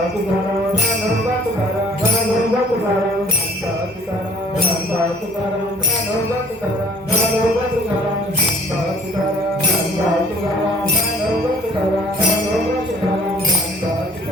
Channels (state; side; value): normal; both; correlation 0.54